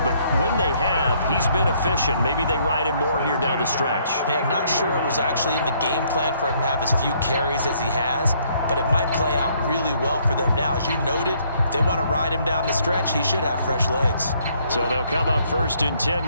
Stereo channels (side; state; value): both; inverted; correlation -0.67